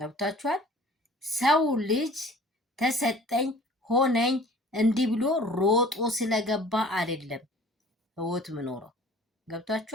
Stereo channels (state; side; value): normal; both; correlation 0.49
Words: ሰው ልጅ ተሰጠኝ ሆነኝ እንዲህ ብሎ ሮጦ ስለገባ አይደለም ህይወት ምኖረው።